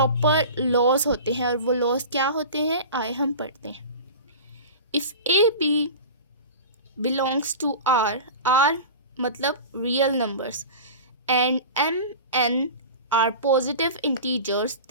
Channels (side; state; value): both; inverted; correlation -0.33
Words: लॉज होते हैं। और वो लॉज क्या होते हैं आए हम पढ़ते हैं। If a b belongs to R, R मतलब real numbers, and m n are positive integers,